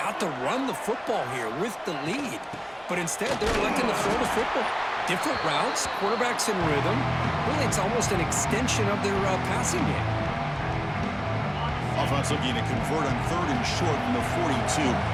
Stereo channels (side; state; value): both; identical; correlation 1.00